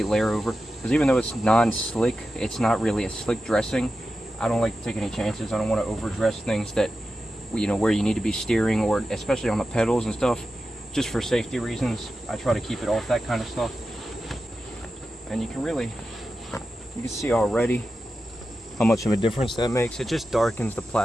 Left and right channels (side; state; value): both; normal; correlation 0.92